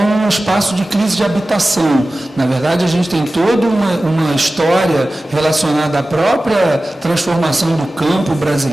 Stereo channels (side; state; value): both; normal; correlation 0.96